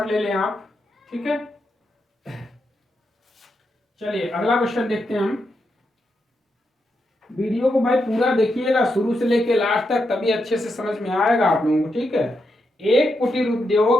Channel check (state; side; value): normal; both; correlation 0.84